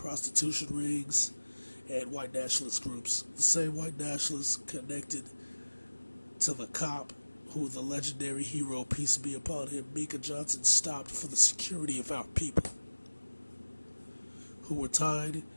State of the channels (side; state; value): both; inverted; correlation -1.00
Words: rings, and white nationalist groups. The same white nationalists connected to the cop who the legendary hero, peace be upon him, Mika Johnson, stopped for the security of our people, who were tied